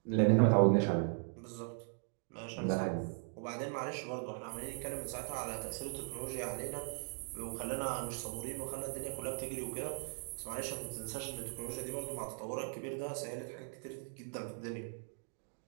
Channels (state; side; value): silent; left; 52 dB below the other